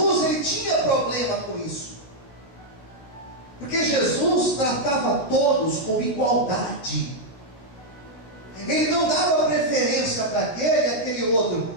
ele tinha problema com isso, porque Jesus tratava todos com igualdade. Ele não dava preferência para aquele e aquele outro,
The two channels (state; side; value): late; right; 16 ms